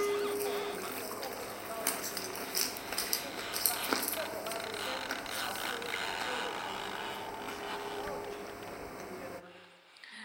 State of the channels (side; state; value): both; identical; correlation 1.00